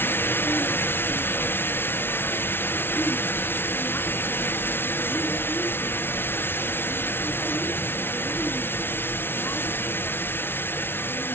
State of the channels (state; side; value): late; right; 0.11 ms